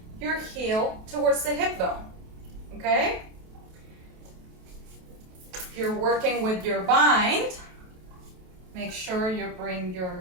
your heel towards the hip bone. Okay? If you're working with your bind, make sure you bring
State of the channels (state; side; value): late; left; 28 ms